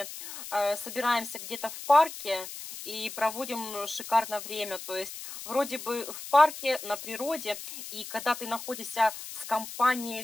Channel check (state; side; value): noise; left; hiss, 11 dB below the sound